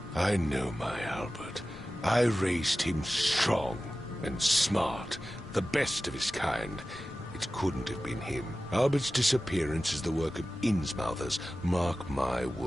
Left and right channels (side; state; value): both; normal; correlation 0.95